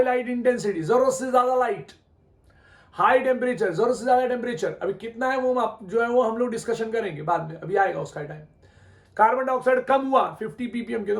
लाइट इंटेंसिटी, जरूरत से ज्यादा लाइट, हाई टेम्परेचर, जरूरत से ज्यादा टेम्परेचर। अभी कितना है वो जो है वो हम लोग डिस्कशन करेंगे बाद में, अभी आएगा उसका टाइम। कार्बन डाइऑक्साइड कम हुआ 50 ppm के, तो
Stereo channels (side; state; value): both; identical; correlation 1.00